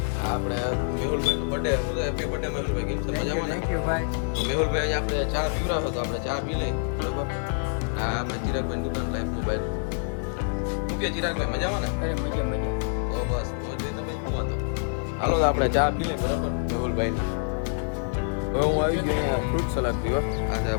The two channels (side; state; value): right; silent; digital silence